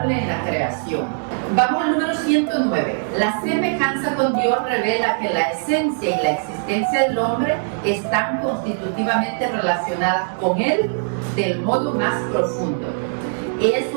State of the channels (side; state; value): left; silent; 65 dB below the other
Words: en la creación. Vamos al número 109. La semejanza con Dios revela que la esencia y la existencia del hombre están constitutivamente relacionadas con Él del modo más profundo. Es